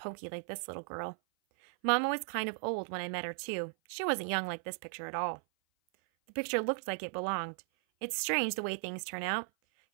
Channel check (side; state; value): left; silent; 54 dB below the other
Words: like this little girl. Mama was kind of old when I met her, too. She wasn't young like this picture at all. The picture looked like it belonged. It's strange the way things turn out.